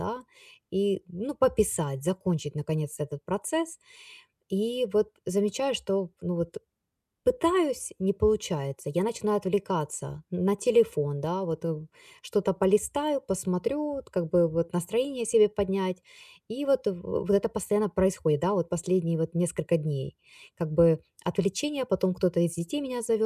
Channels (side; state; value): both; identical; correlation 1.00